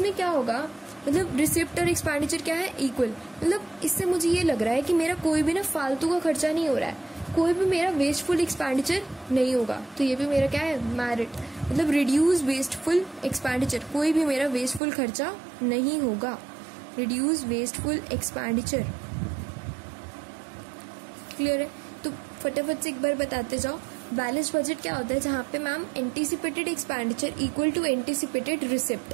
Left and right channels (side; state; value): left; drops out; at 14.8 s